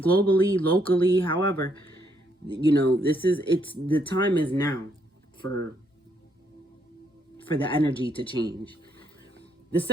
locally, however, you know, the time is now for the energy to change. The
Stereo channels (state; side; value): normal; both; correlation 0.72